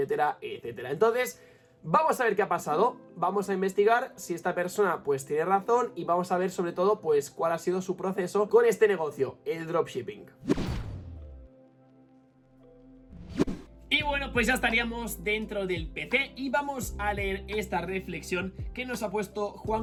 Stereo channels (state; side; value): identical; both; correlation 1.00